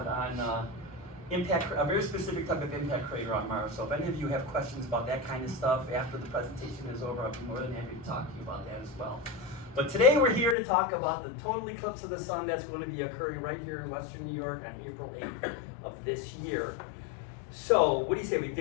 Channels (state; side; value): drops out; right; at 10.6 s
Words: on impact, a very specific type of impact crater on Mars. So if any of you have questions about that kind of stuff after the presentation is over, I'll be more than happy to talk to you about that as well. But today we're here to talk about the total eclipse of the sun that's going to be occurring right here in Western New York on April 8th of this year. So what do you say, we